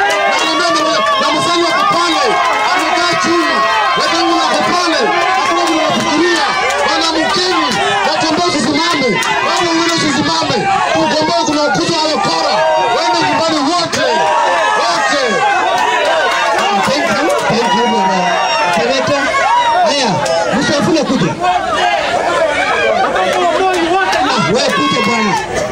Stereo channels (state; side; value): identical; both; correlation 1.00